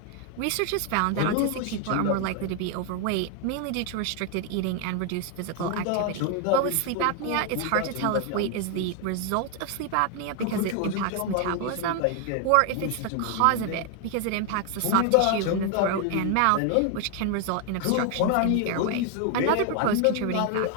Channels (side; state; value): both; different; correlation 0.01